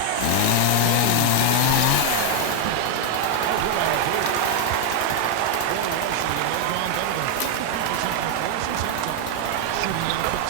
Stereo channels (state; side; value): different; both; correlation 0.00